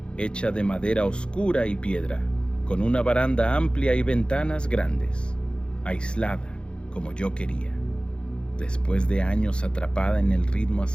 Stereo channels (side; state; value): right; late; 0.054 ms